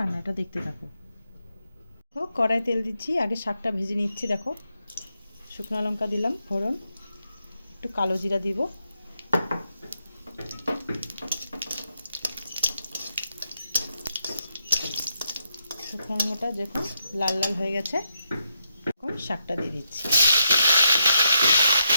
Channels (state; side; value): inverted; both; correlation -0.82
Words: দেখতে থাকো। কড়াই তেল দিচ্ছি, আগে শাকটা ভেজে নিচ্ছি। দেখো শুকনো লঙ্কা দিলাম ফোড়ন, একটু কালো জিরা দিব। শুকনো লঙ্কাটা যখন লাল লাল হয়ে গেছে এখন শাকটা দিয়ে দিচ্ছি।